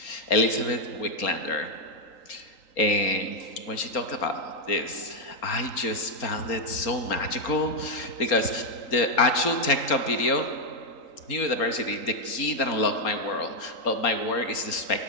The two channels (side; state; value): right; late; 3.8 ms